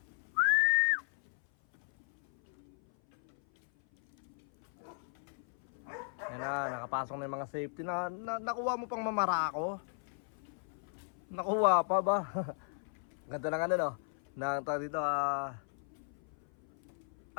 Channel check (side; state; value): right; silent; 54 dB below the other